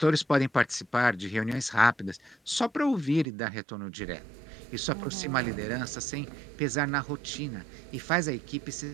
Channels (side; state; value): left; drops out; at 3.2 s